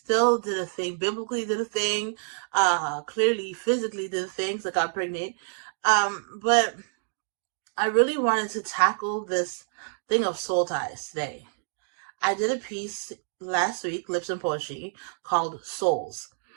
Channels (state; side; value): silent; left; digital silence